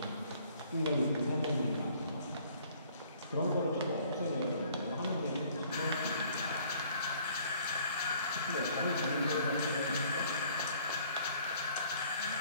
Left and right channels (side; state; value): both; inverted; correlation -0.59